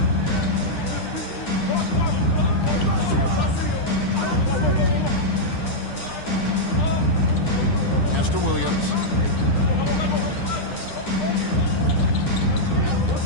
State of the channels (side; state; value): right; late; 9.9 ms